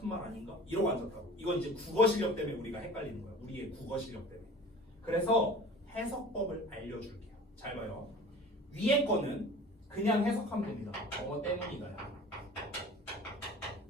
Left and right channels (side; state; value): both; normal; correlation 0.42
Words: 말 아닌가? 이러고 앉았다고. 이건 이제 국어 실력 때문에 우리가 헷갈리는 거야. 우리의 국어 실력 때문에. 그래서 해석법을 알려줄게요. 잘 봐요. 위에 거는 그냥 해석하면 됩니다. 뭐뭐 때문이다요.